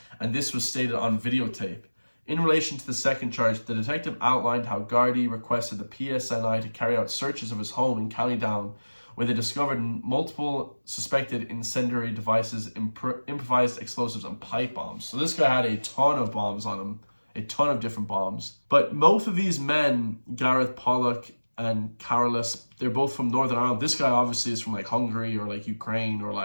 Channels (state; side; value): inverted; both; correlation -1.00